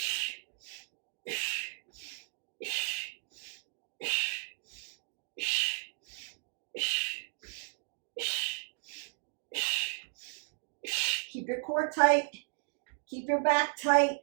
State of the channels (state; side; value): silent; left; digital silence